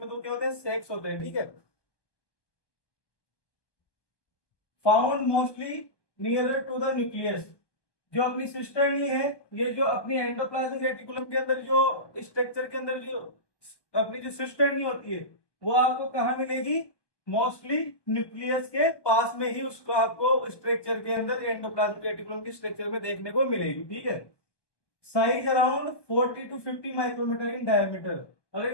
तो क्या होता है, सेक्स होते हैं। ठीक है, found mostly nearer to the nucleus. जो अपनी सिस्टर्नी है, ये जो अपनी एंडोप्लाज्मिक रेटिकुलम के अंदर जो स्ट्रक्चर के अंदर जो अपनी जो सिस्टर्नी होती है वो आपको कहाँ मिलेगी, मोस्टली न्यूक्लियस के पास में ही उसको आपको स्ट्रक्चर के अंदर एंडोप्लाज्मिक रेटिकुलम की स्ट्रक्चर में देखने को मिलेगी। ठीक है, size around 40 to 50 micrometre in diameter. अगर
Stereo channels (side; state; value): right; late; 1.2 ms